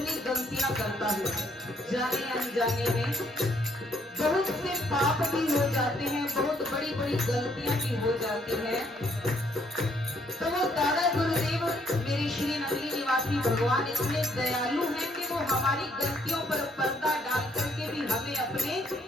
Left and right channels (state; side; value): normal; both; correlation 0.68